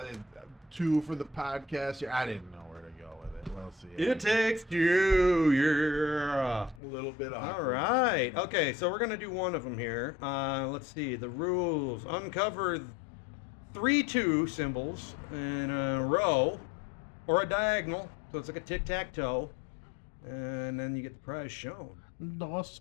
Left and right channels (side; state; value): right; drops out; at 6.8 s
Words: two for the podcast. I didn't know where to go with it. We'll see. It takes two, yeah. A little bit awkward. All right. Okay, so we're going to do one of them here. Let's see. The rules. Uncover 3 2 symbols in a row or a diagonal. So it's like a tic-tac-toe. And then you get the prize shown. Dos